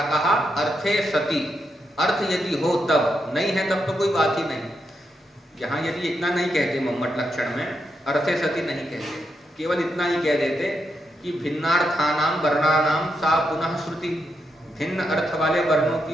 कहा, अर्थे सति, अर्थ यदि हो तब, नहीं है तब तो कोई बात ही नहीं। यहाँ यदि इतना नहीं कहते मम्मट लक्षण में, अर्थे सति नहीं कहते, केवल इतना ही कह देते कि भिन्नार्थानाम वर्णानाम सा पुनः श्रुति, भिन्न अर्थ वाले वर्णों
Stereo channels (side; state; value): both; normal; correlation 0.83